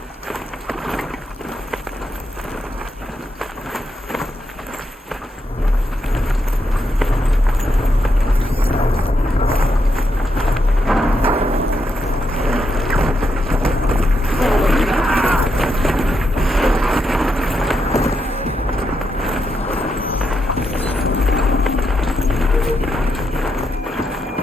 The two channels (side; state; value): both; normal; correlation 0.82